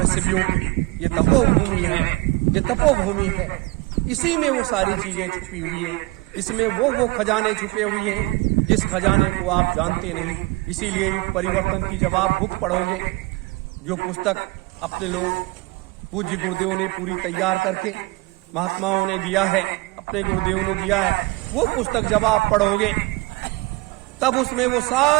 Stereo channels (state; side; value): quieter; left; 23.5 dB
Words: की ये तपोभूमि है, ये तपोभूमि है। इसी में वो सारी चीजें छुपी हुई है, इसमें वो खजाने छुपे हुए हैं जिस खजाने को आप जानते नहीं। इसीलिए परिवर्तन की जब आप बुक पढ़ोगे, जो पुस्तक अपने लोग पूज्य गुरुदेव ने पूरी तैयार करके महात्माओं ने दिया है, अपने गुरुदेव ने दिया है, वो पुस्तक जब आप पढ़ोगे तब उसमें वो